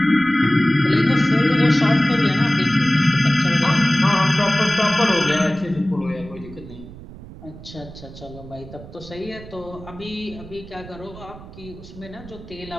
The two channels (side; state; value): right; noise; rumble, 16 dB below the sound